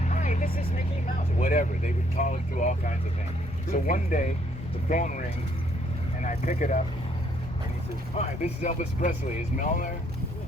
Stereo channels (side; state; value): both; normal; correlation 0.67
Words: "Hi, this is Mickey Mouse," whatever. They would call it through all kinds of things. So one day the phone rings and I pick it up, and he says, "Hi, this is Elvis Presley. Is Mel there?"